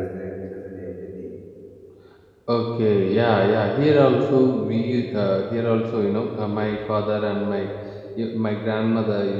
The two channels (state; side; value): identical; both; correlation 1.00